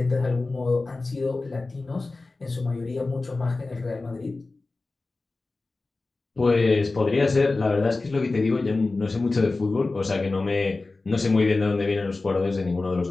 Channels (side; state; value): right; quieter; 3.5 dB